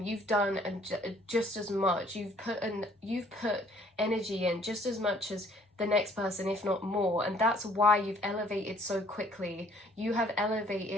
You've done just as much. You've put energy in just as much as the next person, if not more, and that's why you've elevated so quickly. You have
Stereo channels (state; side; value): normal; both; correlation 0.59